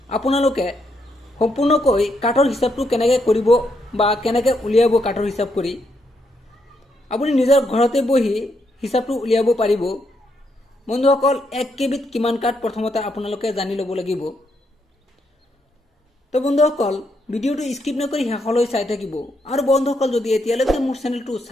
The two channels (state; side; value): normal; both; correlation 0.78